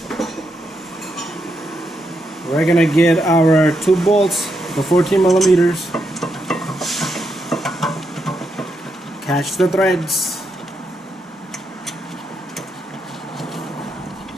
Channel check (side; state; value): both; normal; correlation 0.82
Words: We're gonna get our 2 bolts, the 14 millimeters. Catch the threads.